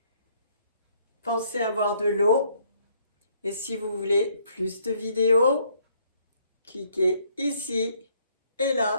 Pensez à boire de l'eau. Et si vous voulez plus de vidéos, cliquez ici et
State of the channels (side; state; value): both; inverted; correlation -0.66